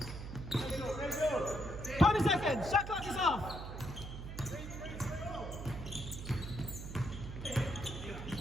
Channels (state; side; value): noise; right; hum, 8 dB below the sound